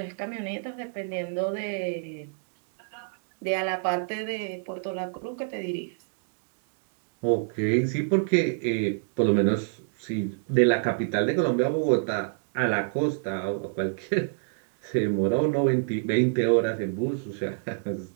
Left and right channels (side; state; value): left; silent; digital silence